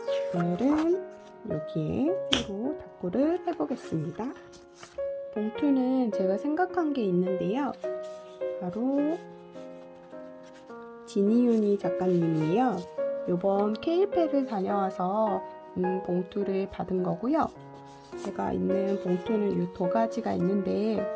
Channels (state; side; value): identical; both; correlation 1.00